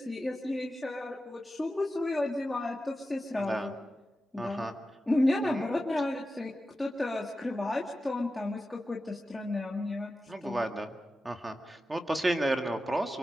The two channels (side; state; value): both; normal; correlation 0.92